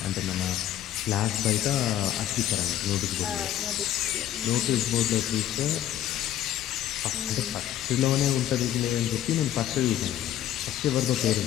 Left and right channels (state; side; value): quieter; right; 11.8 dB